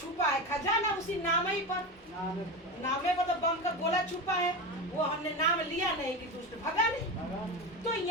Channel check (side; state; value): both; normal; correlation 0.21